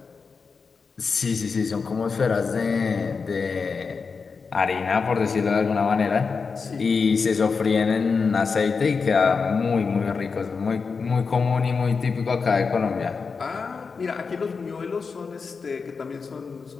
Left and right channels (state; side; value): quieter; right; 5.1 dB